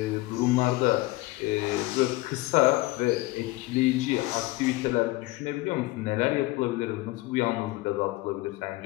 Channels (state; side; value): quieter; right; 19.9 dB